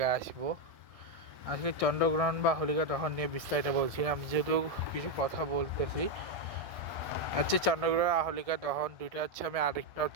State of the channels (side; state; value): left; late; 1.6 ms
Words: আসবো। আজকে চন্দ্রগ্রহণ বা হোলিকা দহন নিয়ে বিস্তারিত বলছি। আমি যেহেতু কিছু কথা বলতেছি, আজকে চন্দ্রগ্রহণ আর হোলিকা দহন দুইটা হচ্ছে আমি আরেকটা